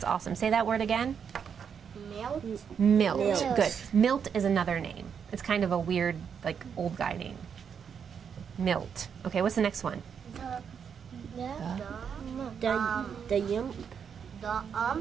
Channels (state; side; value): quieter; left; 7.2 dB